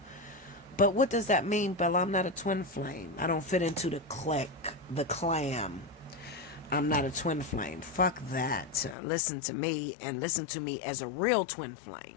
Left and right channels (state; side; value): drops out; right; at 9.0 s